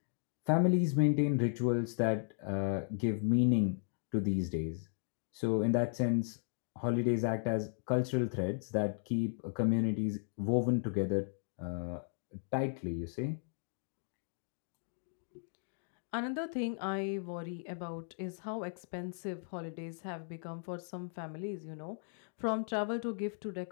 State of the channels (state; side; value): silent; right; digital silence